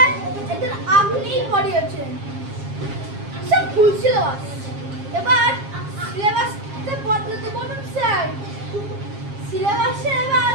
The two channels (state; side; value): late; left; 7.4 ms